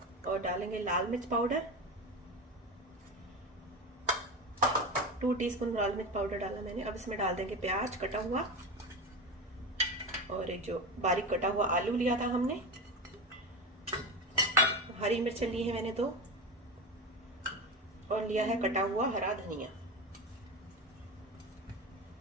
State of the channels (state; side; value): normal; both; correlation 0.23